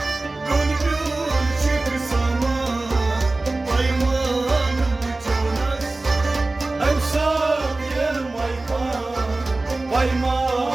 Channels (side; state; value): left; quieter; 3.1 dB